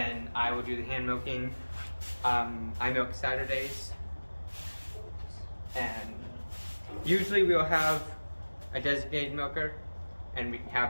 I will do the hand milking. I milk Saturdays, and usually we'll have a designated milker, and we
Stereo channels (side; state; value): both; inverted; correlation -1.00